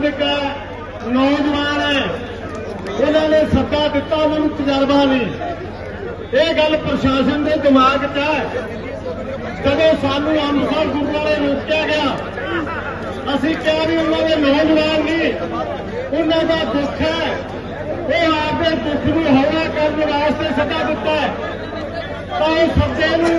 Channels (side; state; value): both; identical; correlation 1.00